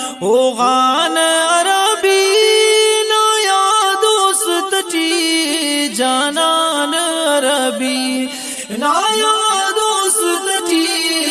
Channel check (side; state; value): both; identical; correlation 1.00